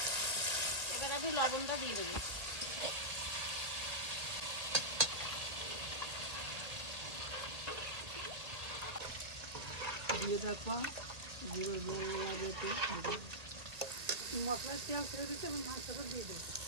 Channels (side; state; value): left; late; 2.1 ms